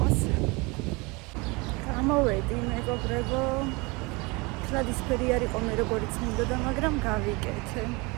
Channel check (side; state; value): left; quieter; 26.5 dB